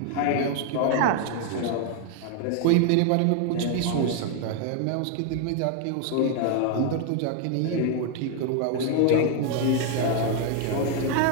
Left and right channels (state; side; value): different; both; correlation 0.00